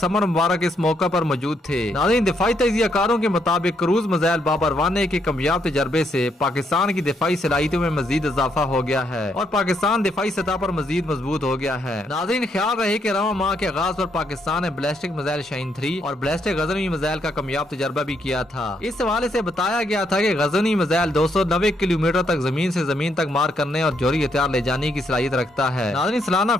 मुबारक इस मौका पर मौजूद थे। नाज़रीन, दिफाई तजियाकारों के मुताबिक क्रूज मिसाइल बाबर 1A के कामयाब तजर्बे से पाकिस्तान की दिफाई सलाहियतों में मजीद इजाफा हो गया है और पाकिस्तान दिफाई सतह पर मजीद मजबूत हो गया है। नाज़रीन, ख्याल रहे कि रवां माह के आगाज पर पाकिस्तान ने बैलिस्टिक मिसाइल शाहीन 3 और बैलिस्टिक गजनवी मिसाइल का कामयाब तजर्बा भी किया था। इस हवाले से बताया गया था कि गजनवी मिसाइल 290 किलोमीटर तक जमीन से जमीन तक मार करने और जोरी हथियार ले जाने की सलाहियत रखता है। नाज़रीन, सालाना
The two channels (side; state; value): both; normal; correlation 0.75